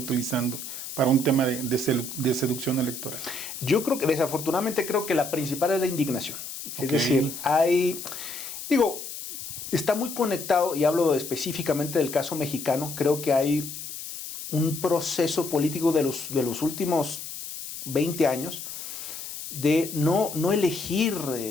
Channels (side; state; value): left; noise; hiss, 9 dB below the sound